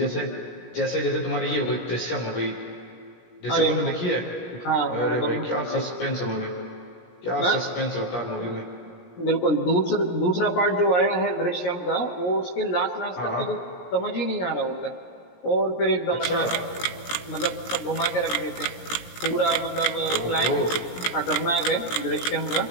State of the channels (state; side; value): late; right; 17 ms